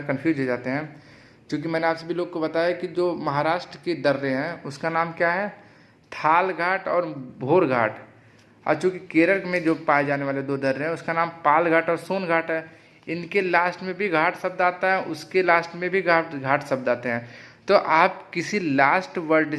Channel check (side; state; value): both; identical; correlation 1.00